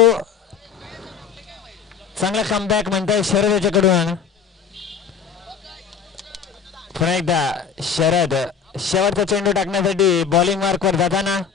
चांगला कमबॅक म्हणतोय शरद याच्याकडून. पुन्हा एकदा शरद शेवटचा चेंडू टाकण्यासाठी बॉलिंग मार्कवर जाताना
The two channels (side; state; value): right; quieter; 6.8 dB